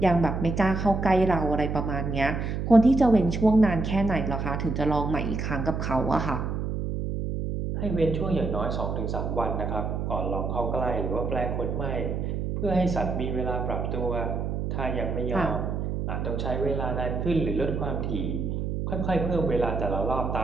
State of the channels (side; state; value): right; noise; hum, 2 dB below the sound